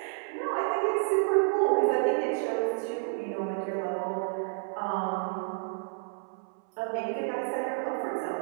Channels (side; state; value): left; silent; 58 dB below the other